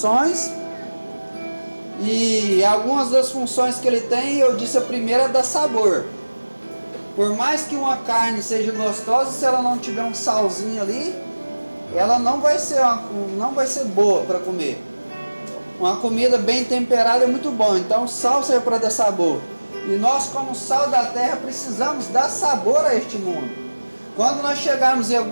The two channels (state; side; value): inverted; both; correlation -1.00